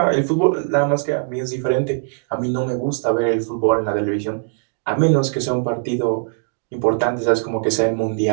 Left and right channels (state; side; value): silent; left; digital silence